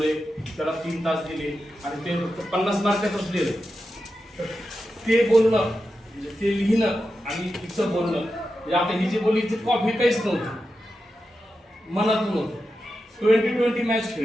त्याला 3 तास दिले आणि ते 50 मार्कातच लिहिलंय. ते बोलणं म्हणजे ते लिहिणं आणि तिचं बोलणं म्हणजे आता ही जी बोलली ती कॉफी काहीच नव्हती, मनातून होतं. 20-20 मॅच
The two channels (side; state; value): both; normal; correlation 0.90